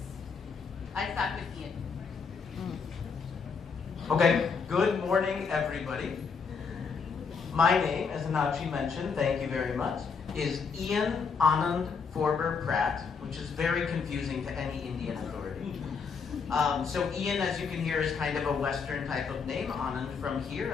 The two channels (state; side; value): quieter; right; 5.5 dB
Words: I'll start with Ian. Okay, good morning everybody. My name, as Enakshi mentioned, thank you very much, is Ian Anand Forber-Pratt, which is very confusing to any Indian authority. So Ian, as you can hear, is kind of a Western type of name. Anand from here